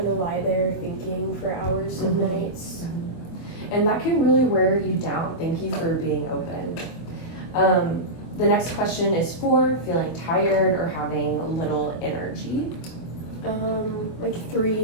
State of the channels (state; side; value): late; right; 24 ms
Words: of lie there thinking for hours and nights. And that can really wear you down. Thank you for being open. The next question is 4, feeling tired or having little energy. Like